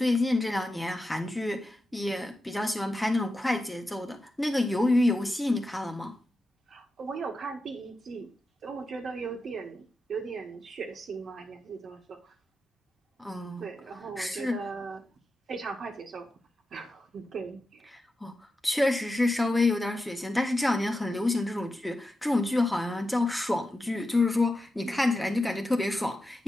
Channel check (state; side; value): normal; both; correlation 0.90